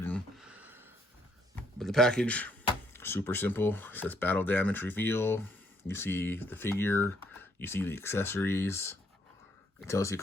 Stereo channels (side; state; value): both; normal; correlation 0.70